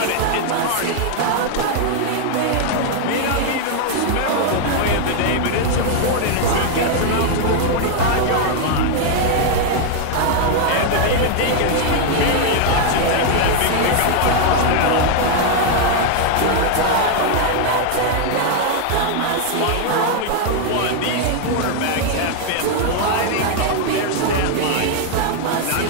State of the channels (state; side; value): different; both; correlation 0.00